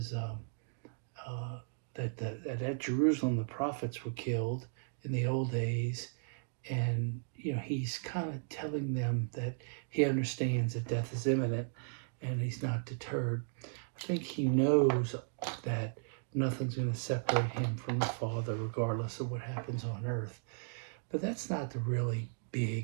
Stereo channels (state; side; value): silent; left; digital silence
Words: that at Jerusalem the prophets were killed in the old days, and he's kind of telling them that he understands that death is imminent, and he's not deterred. I think he knows that nothing's going to separate him from the Father, regardless of what happens on earth. But that's not the really